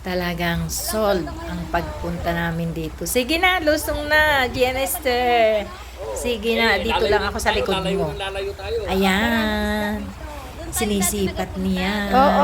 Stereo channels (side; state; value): both; identical; correlation 1.00